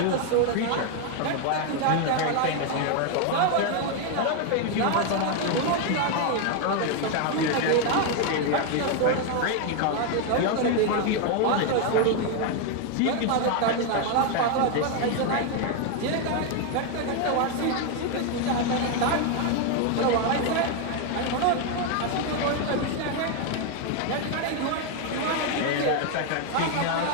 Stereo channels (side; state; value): both; different; correlation 0.01